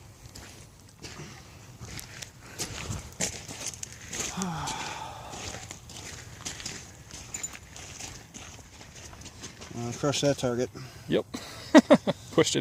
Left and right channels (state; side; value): identical; both; correlation 1.00